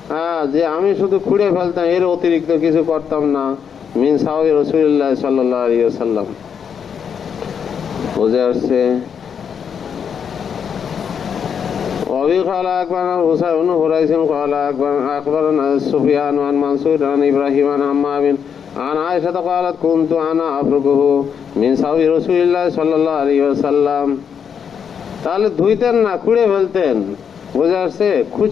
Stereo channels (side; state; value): right; quieter; 7.3 dB